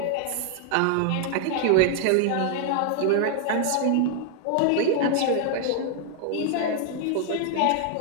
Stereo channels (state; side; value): different; both; correlation 0.00